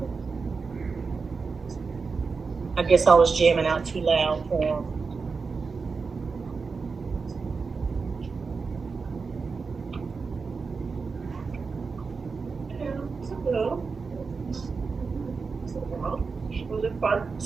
I guess I was jamming out too loud for him.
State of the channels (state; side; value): quieter; left; 4.8 dB